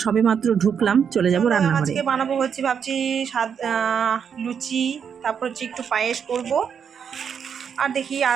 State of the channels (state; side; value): quieter; left; 7.3 dB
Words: সবে মাত্র ঢুকলাম, চলে যাবো রান্নাঘরে। আজকে বানাবো হচ্ছে ভাবছি লুচি, তারপর হচ্ছে একটু পায়েস করব, আর দেখি